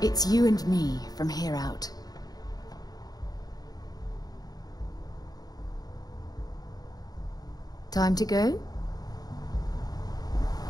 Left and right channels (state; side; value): late; right; 0.19 ms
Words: It's you and me from here out. Time to go?